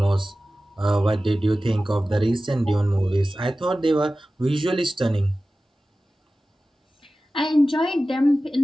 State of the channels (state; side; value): normal; both; correlation 0.95